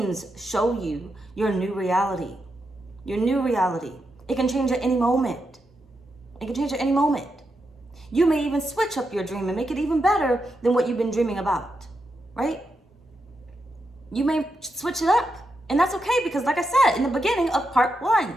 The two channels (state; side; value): normal; both; correlation 0.85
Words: show you your new reality. Your new reality. It can change at any moment. It can change at any moment. You may even switch up your dream and make it even better than what you've been dreaming about, right? You may switch it up. And that's okay because, like I said in the beginning of part 1,